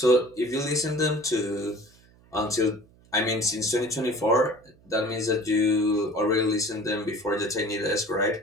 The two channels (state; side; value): noise; right; hum, 28 dB below the sound